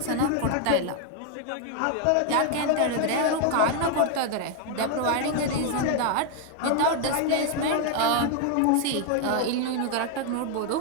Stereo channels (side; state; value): both; different; correlation 0.00